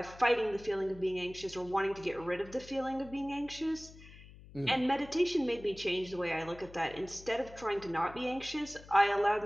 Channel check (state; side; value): noise; left; hum, 19 dB below the sound